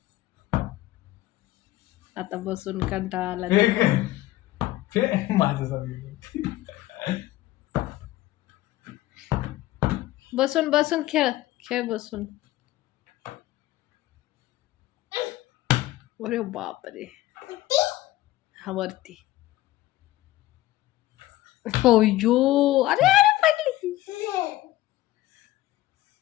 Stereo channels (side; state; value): right; quieter; 16.3 dB